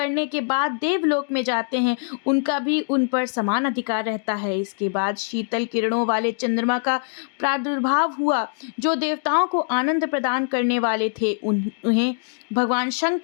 के बाद देवलोक में जाते हैं, उनका भी उन पर समान अधिकार रहता है। इसके बाद शीतल किरणों वाले चंद्रमा का प्रादुर्भाव हुआ, जो देवताओं को आनंद प्रदान करने वाले थे। उन्हें भगवान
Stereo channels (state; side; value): silent; right; digital silence